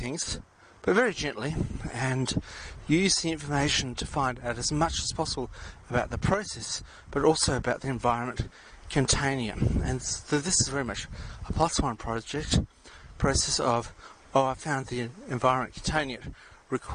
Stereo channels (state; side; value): identical; both; correlation 1.00